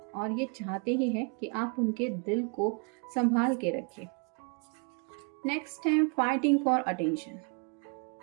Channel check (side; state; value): left; quieter; 35.5 dB